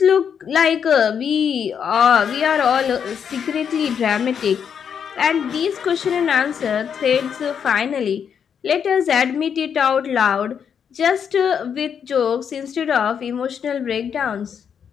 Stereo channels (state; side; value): quieter; right; 7.5 dB